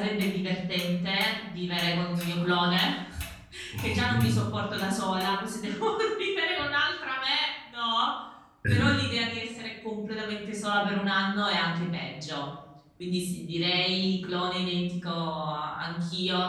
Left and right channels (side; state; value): both; identical; correlation 1.00